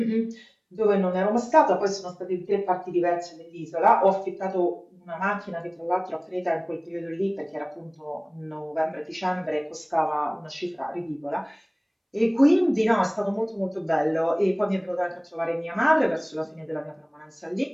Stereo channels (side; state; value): both; identical; correlation 1.00